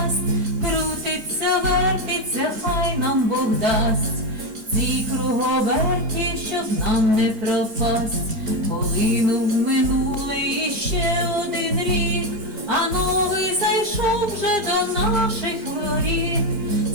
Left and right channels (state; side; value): late; left; 4.4 ms